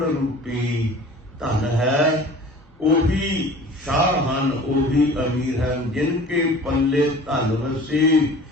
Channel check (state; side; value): normal; both; correlation 0.43